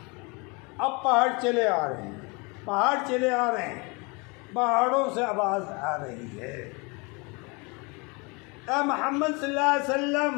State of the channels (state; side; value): quieter; right; 29.2 dB